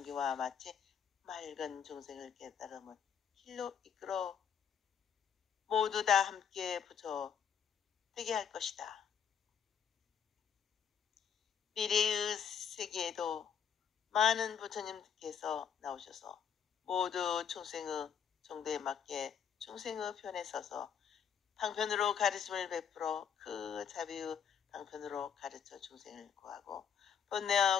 마치 맑은 중생을 깨달음을 길로 이끌어 모두 다 함께 부처 되게 할 것이다. 미래의 세계에도 많은 부처님께서 나오셔서 모두 중생의 정도에 맞게 중생의 편에 서서 방편으로 가르침을 베풀어 그 자비의 방편으로 가르쳐 중생을 구하고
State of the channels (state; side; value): quieter; right; 7.7 dB